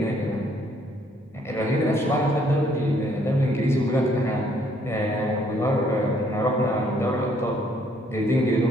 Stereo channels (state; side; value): normal; both; correlation 0.66